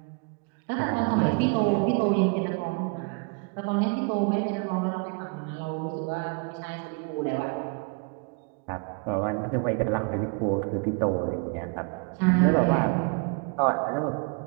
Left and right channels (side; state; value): left; quieter; 33.3 dB